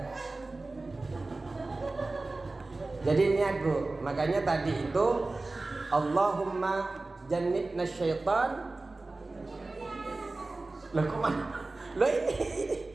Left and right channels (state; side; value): quieter; left; 3.2 dB